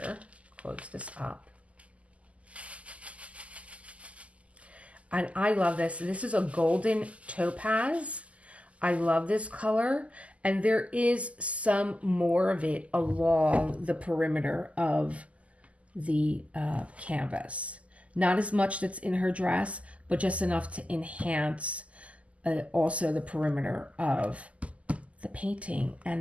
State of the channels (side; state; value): left; late; 0.065 ms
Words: close this up. And I love this. This is a golden topaz. I love this color. And there is some more of it along the perimeter of the canvas. Not as much that's in her dress, but just enough to enhance also the perimeter of the painting.